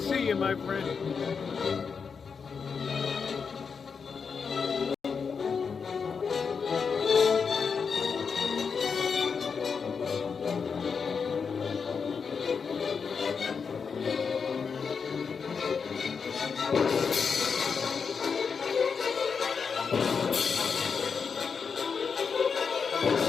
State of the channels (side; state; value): right; quieter; 5.8 dB